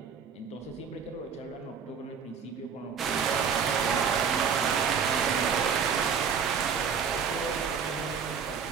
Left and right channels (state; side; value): quieter; left; 6.7 dB